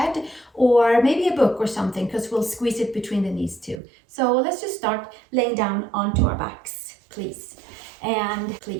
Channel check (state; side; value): drops out; left; at 3.8 s